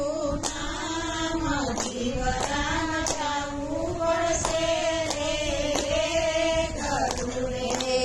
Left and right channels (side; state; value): both; identical; correlation 1.00